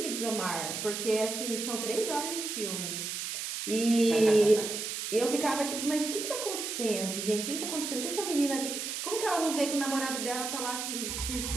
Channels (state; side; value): noise; right; hiss, 4 dB below the sound